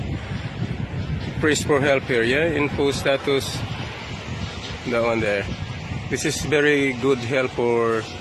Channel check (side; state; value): both; identical; correlation 1.00